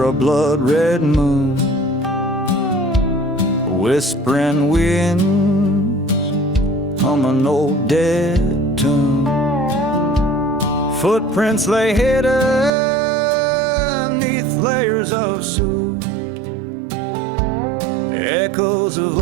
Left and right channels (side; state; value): left; drops out; at 12.7 s